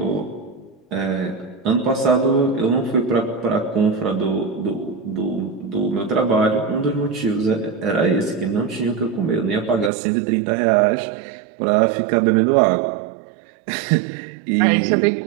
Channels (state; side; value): drops out; left; at 9.9 s